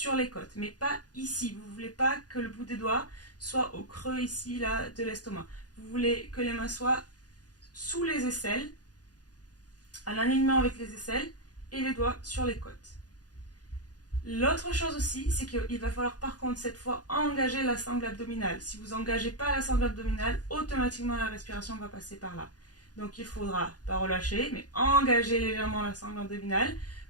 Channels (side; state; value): right; late; 0.68 ms